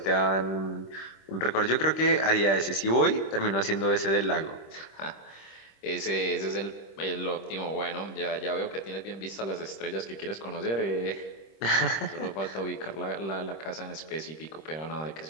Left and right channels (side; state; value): right; late; 26 ms